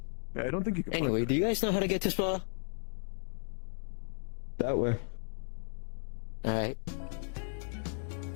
Yeah, I don't think you can. Anyway, do you guys know how to get to Spa? That way. Alright.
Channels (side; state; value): right; silent; digital silence